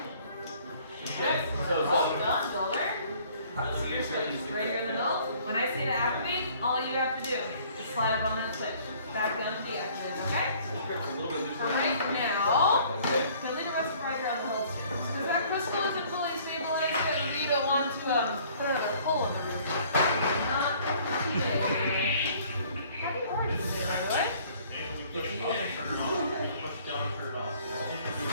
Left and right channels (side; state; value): both; inverted; correlation -0.56